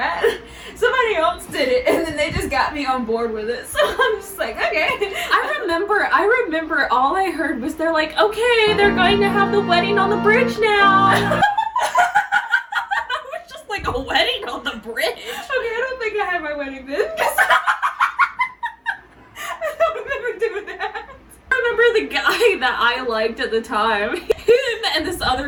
Somebody else did it, and then they just got me on board with it. So I'm just like, okay. I remember all I heard was they're like, okay, they're going to have the wedding on the bridge now. I was just like, a wedding on the bridge? Okay, I don't think I had my wedding then. that I liked at the time. Him and this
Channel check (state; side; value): identical; both; correlation 1.00